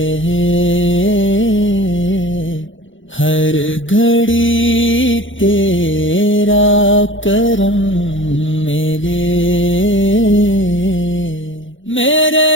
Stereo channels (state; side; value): late; right; 0.56 ms